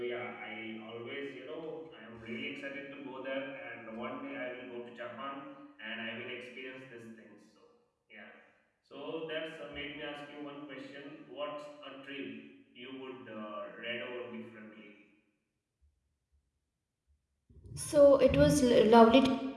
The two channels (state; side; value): identical; both; correlation 1.00